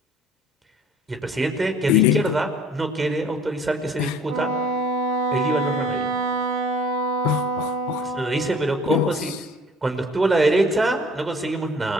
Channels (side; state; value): both; normal; correlation 0.52